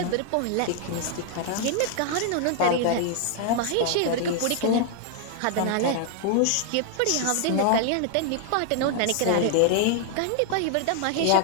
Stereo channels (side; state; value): both; different; correlation 0.00